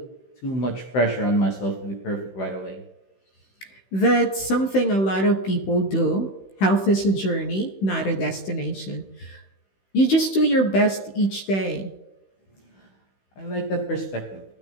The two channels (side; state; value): right; late; 16 ms